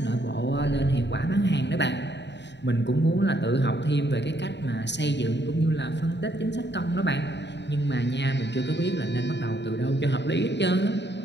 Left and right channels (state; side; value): late; right; 0.51 ms